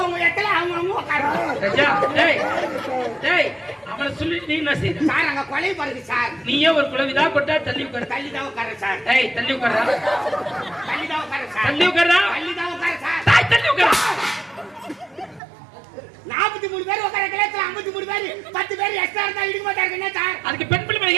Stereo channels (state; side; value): drops out; left; at 15.4 s